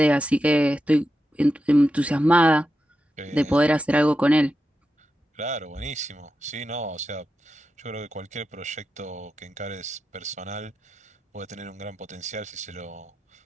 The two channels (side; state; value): both; normal; correlation 0.89